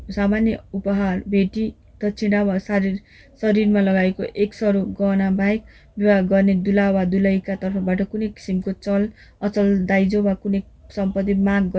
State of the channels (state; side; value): identical; both; correlation 1.00